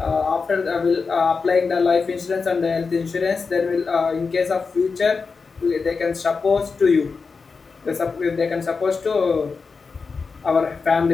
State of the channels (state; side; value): quieter; right; 4.8 dB